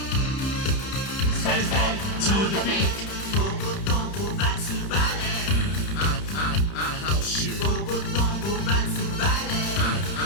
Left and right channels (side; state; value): right; late; 31 ms